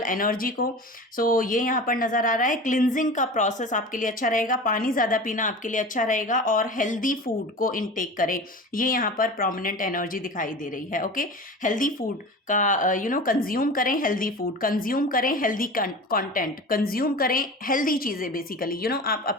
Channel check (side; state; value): both; normal; correlation 0.33